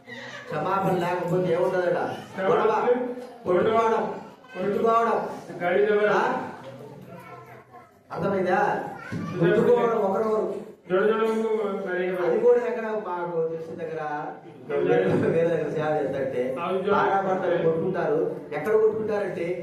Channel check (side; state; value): both; identical; correlation 1.00